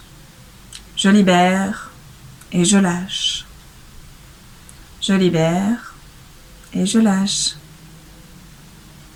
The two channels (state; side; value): identical; both; correlation 1.00